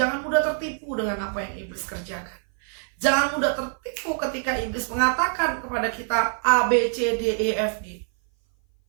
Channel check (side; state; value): left; silent; 58 dB below the other